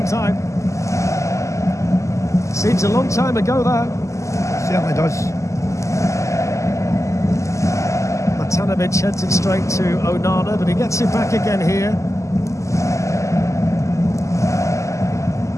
time. Seems a long time ago, that. Certainly does. Matanovic heads it straight to Onana, but he gets it back again here.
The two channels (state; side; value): late; right; 0.15 ms